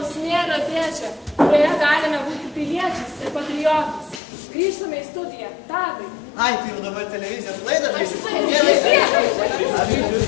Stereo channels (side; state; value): right; drops out; at 4.2 s